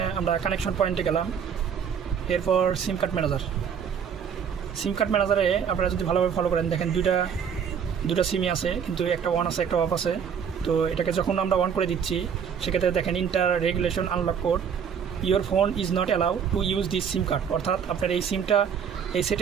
আমরা কানেকশন পয়েন্টে গেলাম, এরপর সিম কার্ড ম্যানেজারে আপনারা যদি ভালোভাবে ফলো করেন, দেখেন দুটা সিমই আছে, কিন্তু একটা অন আছে একটা অফ আছে। তো এটাকে যখন আমরা অন করে দিচ্ছি সেক্ষেত্রে দেখেন inter regulation unlock code, your phone is not allow to use this SIM card, অর্থাৎ আপনার এই সিমটা এই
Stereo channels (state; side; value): quieter; left; 7.4 dB